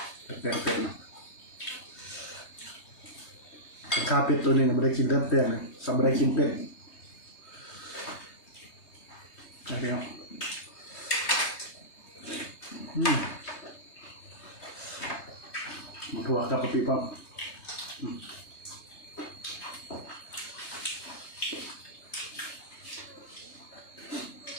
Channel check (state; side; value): late; right; 3.2 ms